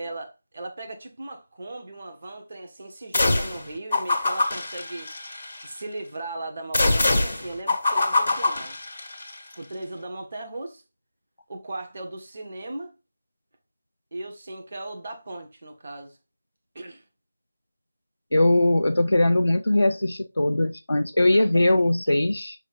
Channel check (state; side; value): inverted; both; correlation -0.95